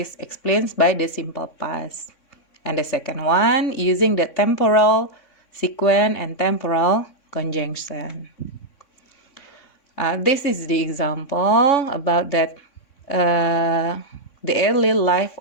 explained by the simple past. And the second one, using the temporal sequence and temporal conjunction. This is the example about that the early life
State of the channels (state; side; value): late; right; 3.6 ms